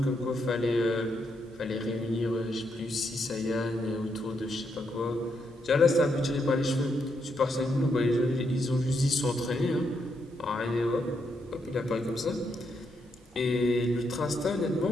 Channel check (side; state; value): both; normal; correlation 0.79